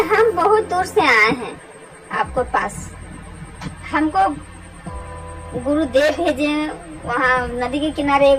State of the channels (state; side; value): identical; both; correlation 1.00